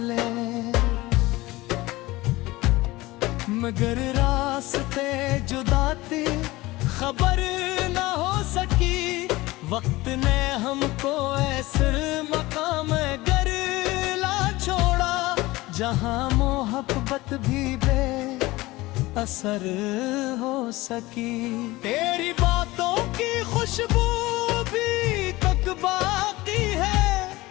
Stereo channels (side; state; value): right; quieter; 19.8 dB